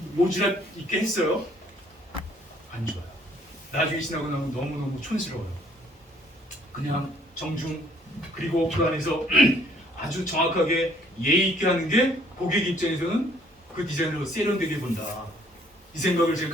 모지랖 있게 했어요. 안 좋아요. 나중에 지나고 나면 너무너무 촌스러워요. 그냥 정중 그리고 그 안에서 아주 정확하게 예의 있게 하는 게 고객 입장에서는 그 디자인으로 세련되게 본다. 이 생각을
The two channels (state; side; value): normal; both; correlation 0.62